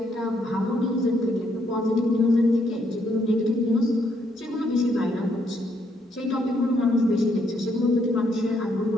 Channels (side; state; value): both; normal; correlation 0.73